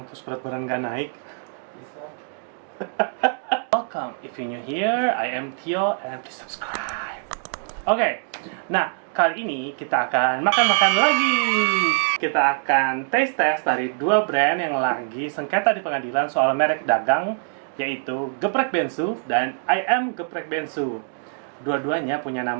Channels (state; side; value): silent; left; digital silence